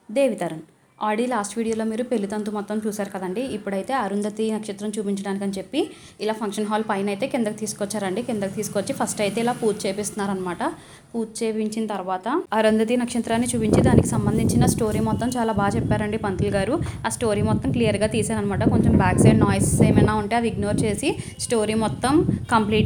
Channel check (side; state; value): both; identical; correlation 1.00